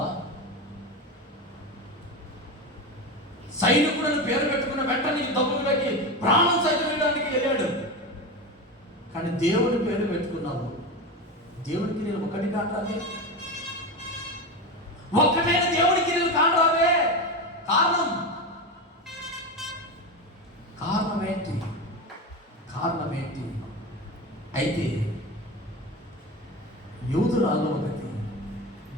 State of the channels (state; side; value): normal; both; correlation 0.21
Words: సైనికుడిని పేరు పెట్టుకున్న వెంటనే యుద్ధ భూమిలోకి ప్రాణం సైతం వేయడానికి వెళ్ళాడు. కానీ దేవుని పేరు పెట్టుకున్నావు. దేవునికి నేను ఒకటి కాంటావే, ఒక్కటైన దేవునికి నేను కాంటావే. కారణం ఏంటి? అయితే యూదురాలు ఒకటి